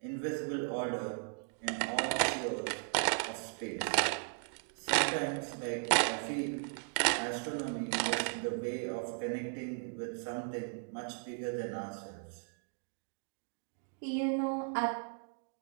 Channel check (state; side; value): silent; left; 53 dB below the other